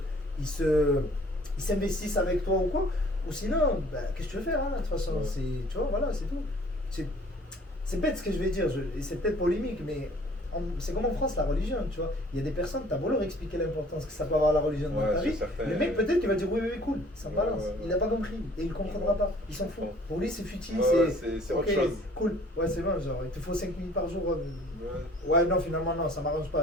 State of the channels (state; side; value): normal; both; correlation 0.54